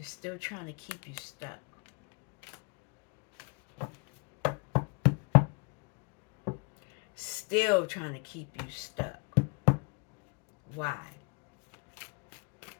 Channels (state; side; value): quieter; right; 32.9 dB